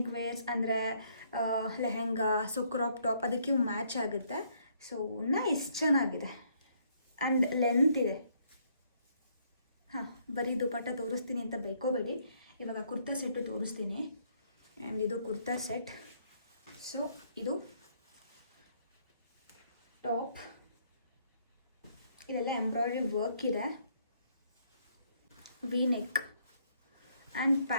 ವೇರ್ಸ್ ಅಂದರೆ ಲೆಹೆಂಗಾ, ಸೊ ಕ್ರಾಪ್ ಟಾಪ್, ಅದಕ್ಕೆ ಮ್ಯಾಚ್ ಆಗುತ್ತೆ. ಸೊ ನೈಸ್, ಚೆನ್ನಾಗಿದೆ. ಆ್ಯಂಡ್ ಲೆಂತ್ ಇದೆ. ಹಾಂ, ಬರೀ ದುಪ್ಪಟ್ಟ ತೋರಿಸ್ತೀನಿ ಅಂತ ಬೇಕೋಬೇಡಿ. ಇವಾಗ ಕುರ್ತಾ ಸೆಟ್ಟು ತೋರಿಸ್ತೀನಿ. ಆ್ಯಂಡ್ ಇದು ಕುರ್ತಾ ಸೆಟ್. ಸೊ ಇದು ಟಾಪ್, ಇದೆಲ್ಲ ಎಂಬ್ರಾಯ್ಡ್ರಿ ವರ್ಕ್ ಇದೆ. V neck and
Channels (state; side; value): inverted; both; correlation -0.68